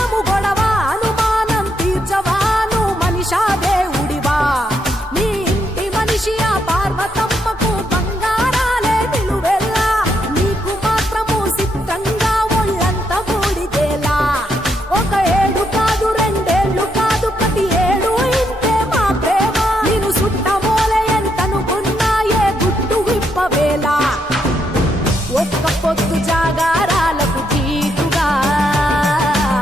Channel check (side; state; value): both; normal; correlation 0.78